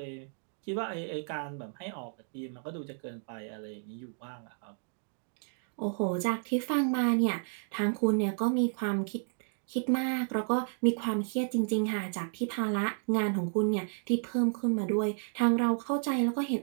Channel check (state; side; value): silent; left; 56 dB below the other